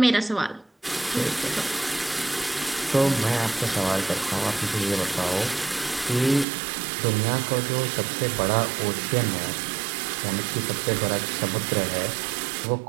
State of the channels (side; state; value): left; drops out; at 6.5 s